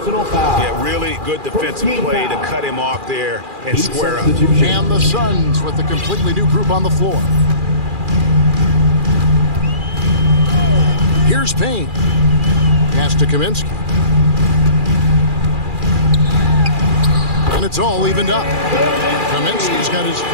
really good defensive play to cut him off there and square up. And the Suns with a completely new group on the floor. Here's Payne. Pass to Kaminsky. And it's all evened up. Kaminsky's got his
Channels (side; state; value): left; late; 2.4 ms